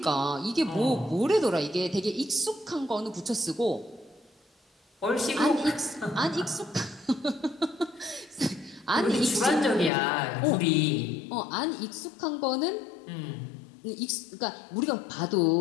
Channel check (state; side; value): drops out; right; at 9.9 s